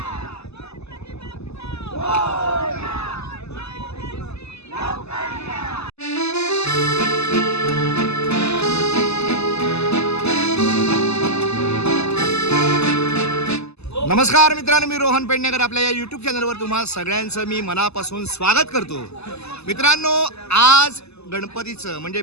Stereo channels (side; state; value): right; late; 0.79 ms